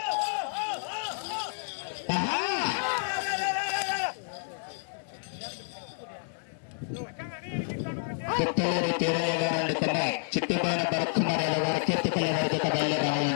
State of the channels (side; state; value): right; silent; digital silence